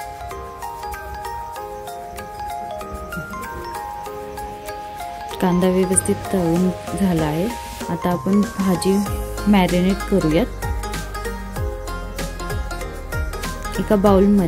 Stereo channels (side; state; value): both; identical; correlation 1.00